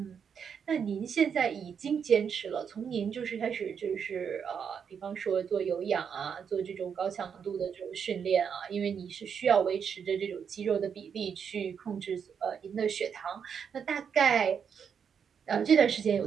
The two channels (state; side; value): quieter; left; 7.1 dB